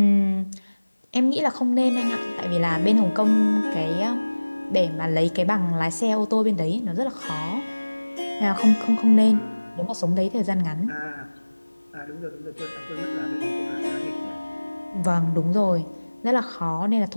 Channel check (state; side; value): inverted; both; correlation -1.00